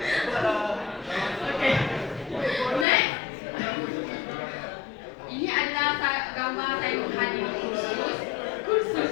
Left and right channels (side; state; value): right; drops out; at 2.9 s